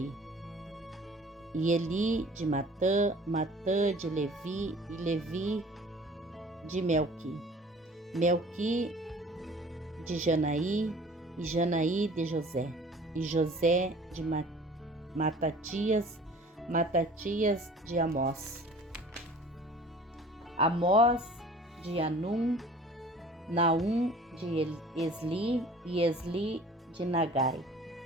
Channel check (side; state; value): both; normal; correlation 0.48